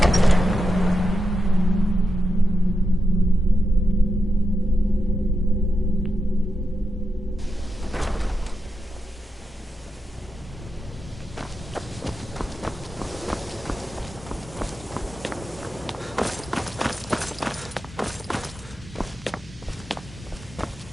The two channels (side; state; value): both; normal; correlation 0.88